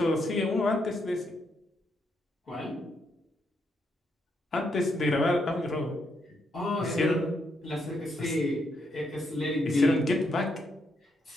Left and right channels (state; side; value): normal; both; correlation 0.78